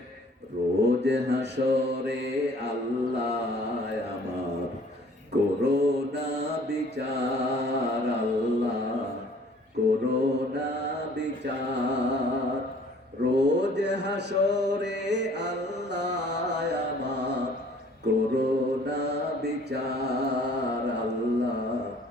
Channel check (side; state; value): both; normal; correlation 0.55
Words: রোজ হাসরে আল্লাহ আমার করোনা বিচার, আল্লাহ করোনা বিচার। রোজ হাসরে আল্লাহ আমার করোনা বিচার, আল্লাহ